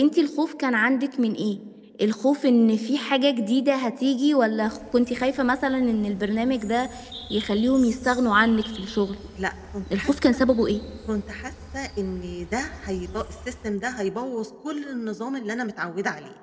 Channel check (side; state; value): both; identical; correlation 1.00